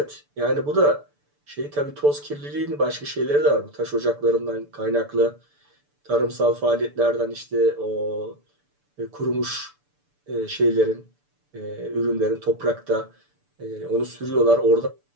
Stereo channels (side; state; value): left; late; 6.9 ms